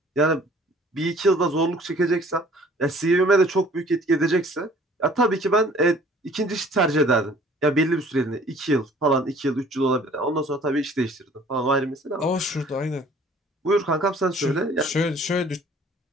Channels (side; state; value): both; normal; correlation 0.53